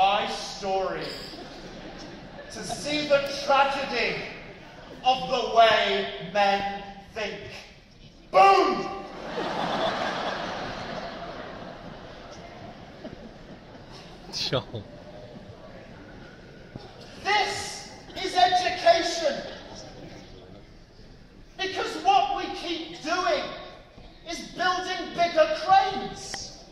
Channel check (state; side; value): identical; both; correlation 1.00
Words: story to see the tragedy of the way men think. Boom! Sure. This is education. Because what we keep doing is building bigger cranes.